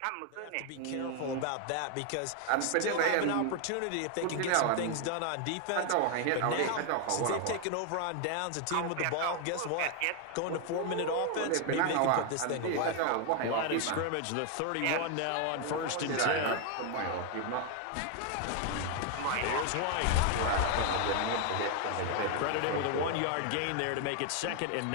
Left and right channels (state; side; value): different; both; correlation 0.00